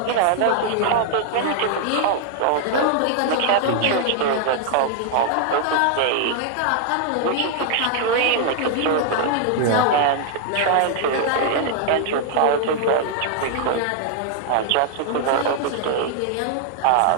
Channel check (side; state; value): both; different; correlation 0.00